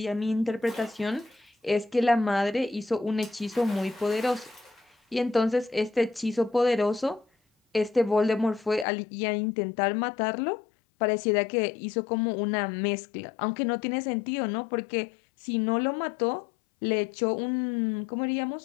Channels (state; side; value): drops out; right; at 8.8 s